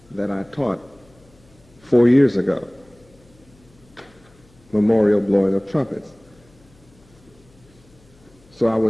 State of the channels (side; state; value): left; noise; hum, 29 dB below the sound